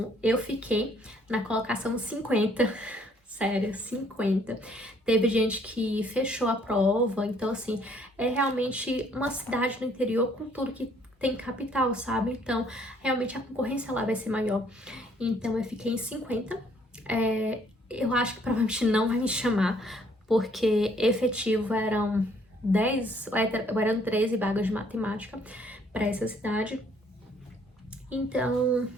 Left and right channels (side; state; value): both; normal; correlation 0.63